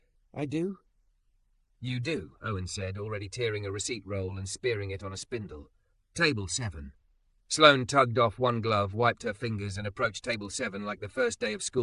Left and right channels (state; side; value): identical; both; correlation 1.00